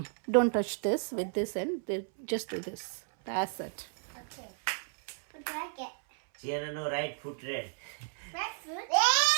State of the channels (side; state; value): left; silent; 56 dB below the other